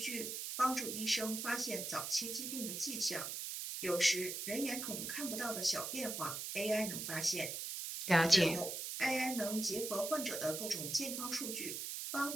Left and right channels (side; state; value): right; noise; hiss, 4 dB below the sound